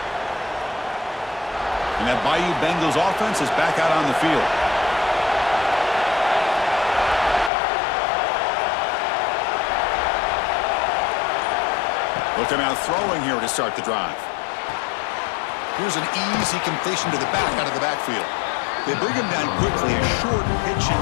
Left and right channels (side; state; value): right; drops out; at 7.5 s